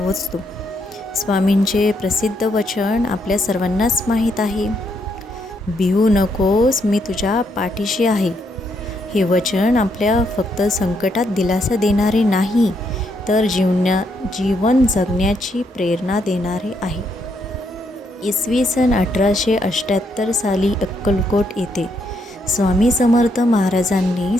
स्वामींचे प्रसिद्ध वचन आपल्या सर्वांनाच माहीत आहे. भिवू नकोस, मी तुझ्या पाठीशी आहे. हे वचन आपल्या फक्त संकटात दिलासा देणारे नाही, तर जीवन जगण्याची प्रेरणा देणारे आहे. इसवी सन 1878 साली अक्कलकोट येथे स्वामी समर्थ महाराजांनी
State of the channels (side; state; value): both; normal; correlation 0.76